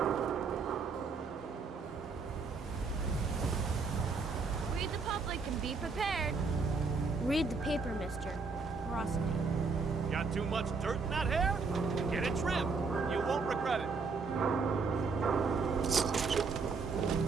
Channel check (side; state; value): left; quieter; 4.6 dB